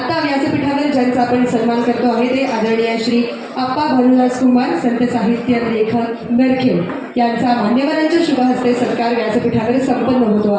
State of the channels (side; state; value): both; identical; correlation 1.00